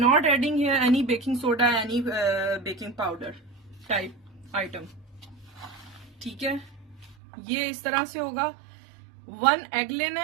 adding here any baking soda, any baking powder type item, ठीक है। ये इस तरह से होगा। 1 एग लेना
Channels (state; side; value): drops out; left; at 7.2 s